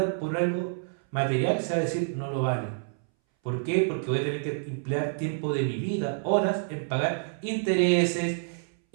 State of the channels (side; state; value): left; silent; 59 dB below the other